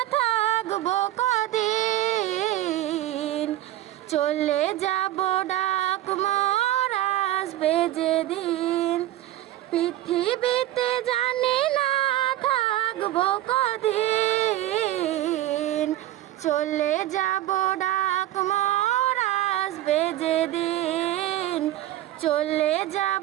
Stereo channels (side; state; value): left; quieter; 14.4 dB